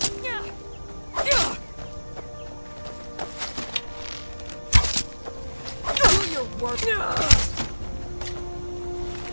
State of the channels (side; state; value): both; inverted; correlation -1.00